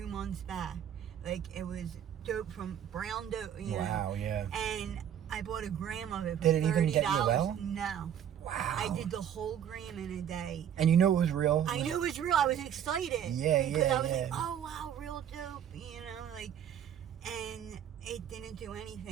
months back. Like it was dope from brown dope. You know? Yeah. And I bought a gram of it for Did it $30. even get you well? No. Wow. I did the whole gram in a day. And you knew it was real? I knew it was real. I was excited. Yeah, because I was yeah. like, oh wow, real dope, you know, like, and it didn't do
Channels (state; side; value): quieter; left; 9.5 dB